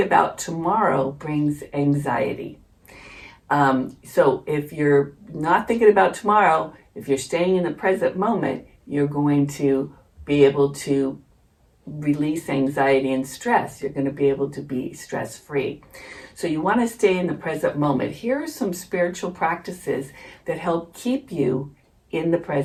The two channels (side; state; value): both; identical; correlation 1.00